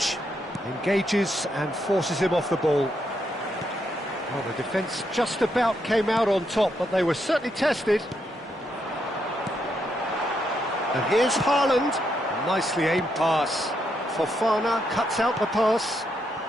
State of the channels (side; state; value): both; normal; correlation 0.79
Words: Engages and forces him off the ball. Well, the defence just about came out on top, but they were certainly tested. And here's Haaland. A nicely aimed pass. Fofana cuts out the pass.